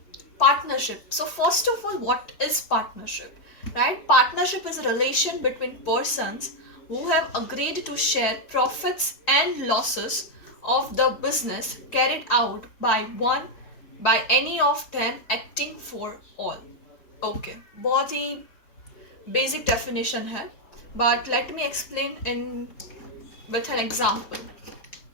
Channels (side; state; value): right; late; 4.6 ms